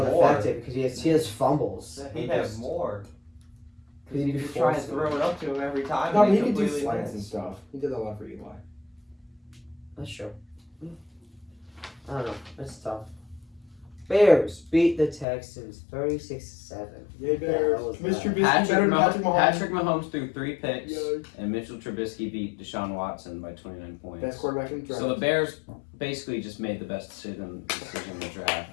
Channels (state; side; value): drops out; right; at 15.2 s